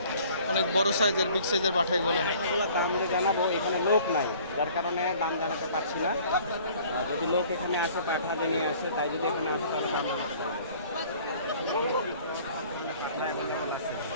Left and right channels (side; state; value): both; inverted; correlation -0.53